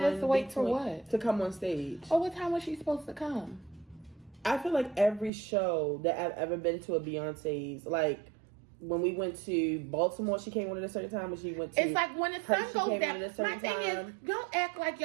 us wait for what? To come on stage. Oh, what time was she supposed to come? I feel like every show that I've ever been to a Beyonce's, like when we went to Baltimore, she came on at a certain time. When she went to, it's like when the sun goes down. My thing is, time. don't act like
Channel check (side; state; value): left; drops out; at 5.3 s